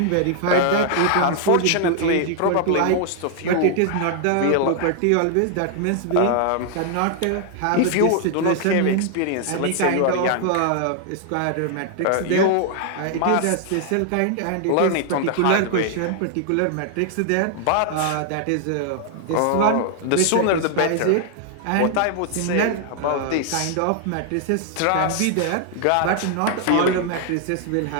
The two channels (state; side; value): different; both; correlation 0.00